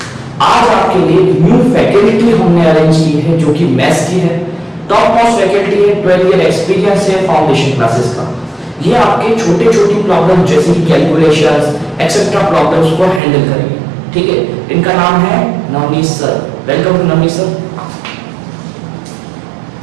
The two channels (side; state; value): left; drops out; at 13.2 s